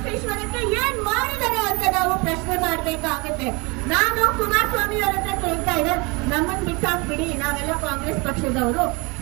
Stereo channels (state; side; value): quieter; left; 27.6 dB